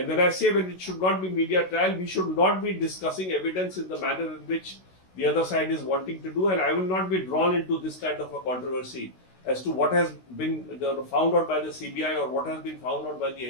when I say when it should not be media trial, we should not be discussing evidence in the manner in which the other side is wanting to do. And I will not be drawn into this kind of a controversy as to what has been found out by the CBI or what has been found out by the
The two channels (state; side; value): late; right; 16 ms